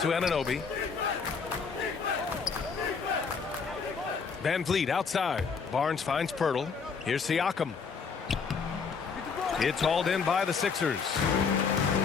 Anunoby. Van Vliet outside. Barnes finds Pirtle. Here's Siakam. It's hauled in by the Sixers.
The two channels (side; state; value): right; quieter; 5.5 dB